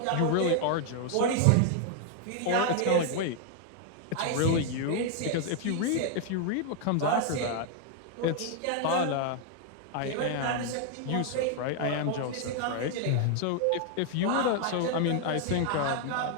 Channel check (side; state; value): both; different; correlation 0.00